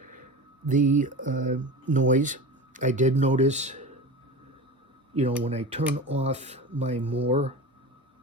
the noise. I did notice, when I turn off my more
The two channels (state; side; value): normal; both; correlation 0.30